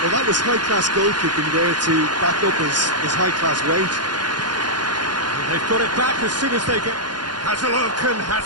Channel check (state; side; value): late; left; 0.70 ms